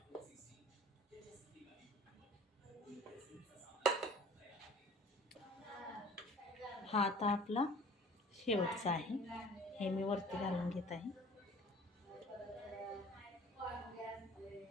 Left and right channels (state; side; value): normal; both; correlation 0.48